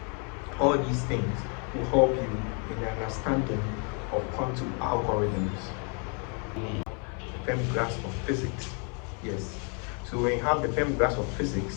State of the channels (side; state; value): right; quieter; 37.8 dB